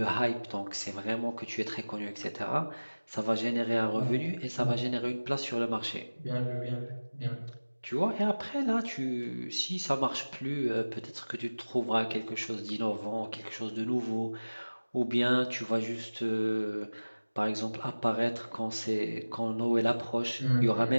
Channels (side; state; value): both; inverted; correlation -1.00